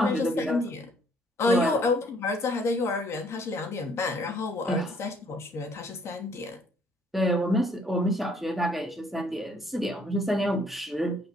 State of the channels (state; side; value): normal; both; correlation 0.63